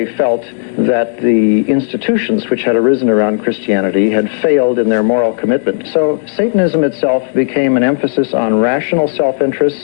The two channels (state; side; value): silent; right; digital silence